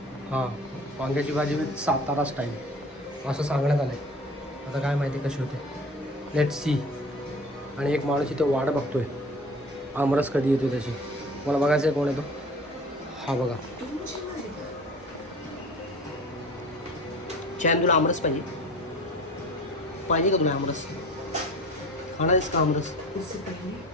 हां, वांग्याची भाजी विथ सातारा स्टाईल असं सांगण्यात आलं आहे. आता काय माहिती कशी होते, लेट सी. आणि एक माणूस इथे वाट बघतोय आमरस कधी येतो त्याची. मला बघायचं आहे कोण येतो. हा बघा, चॅन, तुला आमरस पाहिजे पाहिजे का? तुला आमरस खाणार आहेस का? आमरस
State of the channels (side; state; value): both; normal; correlation 0.42